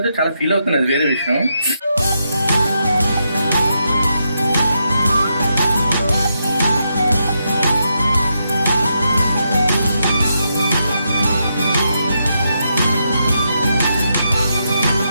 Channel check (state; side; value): inverted; both; correlation -0.82